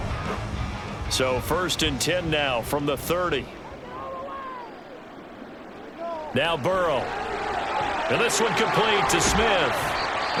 So 1st and 10 now from the 30. Now Burrow. And this one complete to Smith.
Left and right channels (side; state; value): both; identical; correlation 1.00